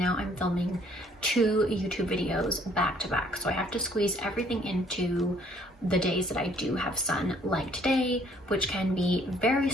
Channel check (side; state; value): both; normal; correlation 0.62